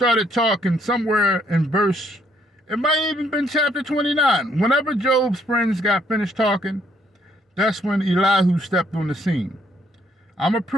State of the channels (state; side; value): normal; both; correlation 0.69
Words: talking somewhere in verse, it might have even been chapter 29. Whenever Job's friends got finished talking, that's when Elihu stepped on the scene. I'm going to